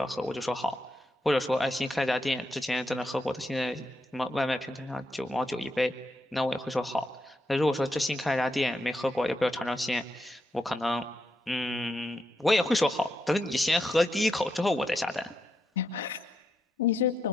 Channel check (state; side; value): normal; both; correlation 0.82